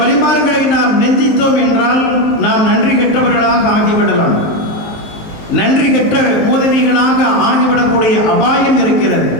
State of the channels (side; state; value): right; late; 19 ms